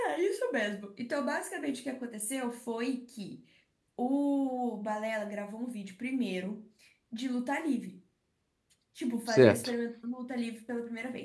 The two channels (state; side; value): identical; both; correlation 1.00